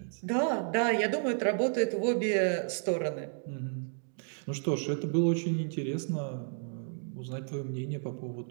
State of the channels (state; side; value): silent; left; 56 dB below the other